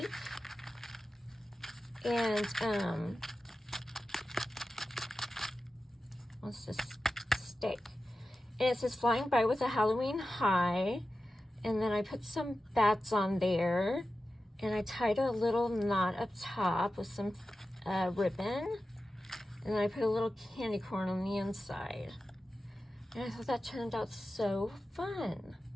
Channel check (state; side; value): normal; both; correlation 0.93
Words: And what's this stick? And it says flying by with a Halloween high. And then I put some bats on there. And I tied a little knot up top with some ribbon. And then I put a little candy corn on the inside. And I thought that turned out so fun.